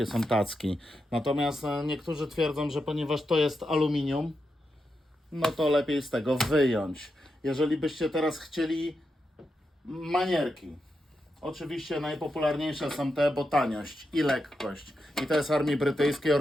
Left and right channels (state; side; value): normal; both; correlation 0.86